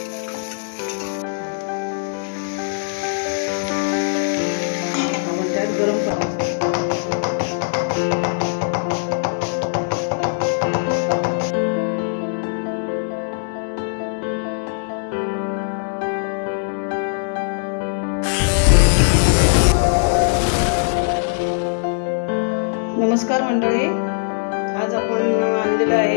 आपण त्यात गरम पाणी नमस्कार मंडळी, आज आपण आणलेलं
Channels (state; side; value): silent; right; digital silence